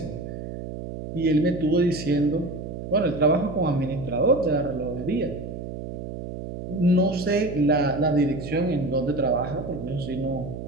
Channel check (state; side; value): noise; right; hum, 8 dB below the sound